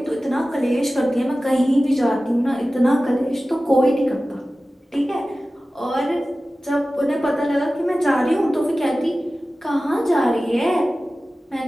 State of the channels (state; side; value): normal; both; correlation 0.96